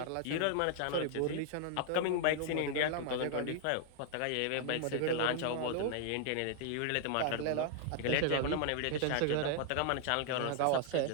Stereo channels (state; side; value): different; both; correlation 0.00